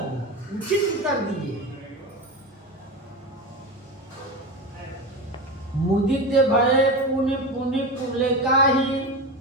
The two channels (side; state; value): both; normal; correlation 0.22